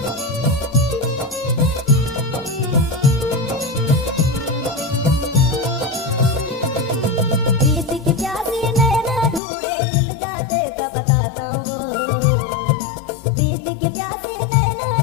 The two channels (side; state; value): right; drops out; at 9.4 s